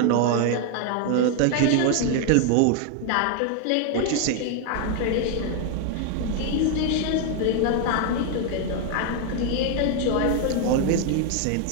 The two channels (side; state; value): both; different; correlation 0.01